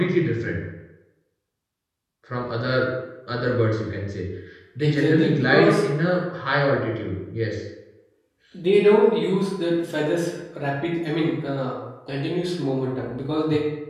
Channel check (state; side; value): identical; both; correlation 1.00